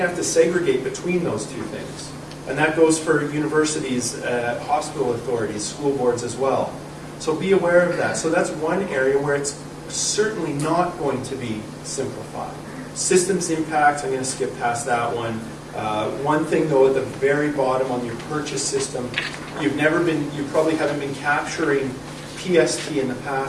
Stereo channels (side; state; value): both; identical; correlation 1.00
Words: have to segregate between those two things. And that goes for universities, hospital authorities, school boards as well. So be aware of that. So that's one area where it's certainly not going to be simplified. Systems impact, I'm going to skip past that one. One thing though, at the very bottom on your purchase system, you probably haven't been capturing PST in the